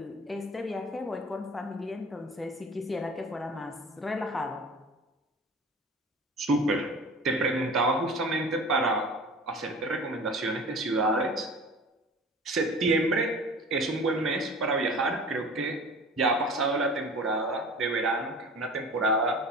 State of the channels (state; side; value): normal; both; correlation 0.39